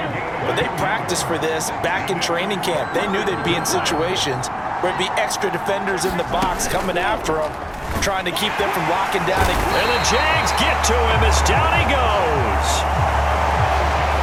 they practiced for this back in training camp. They knew they'd be in situations where it'd be extra defenders in the box coming after them, trying to keep them from locking down. And the Jags get to him as down he goes.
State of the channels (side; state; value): both; identical; correlation 1.00